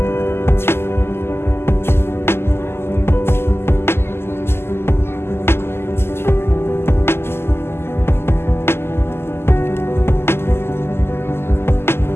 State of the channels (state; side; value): late; right; 0.12 ms